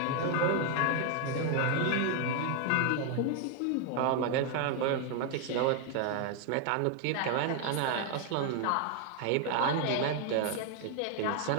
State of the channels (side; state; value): both; different; correlation 0.00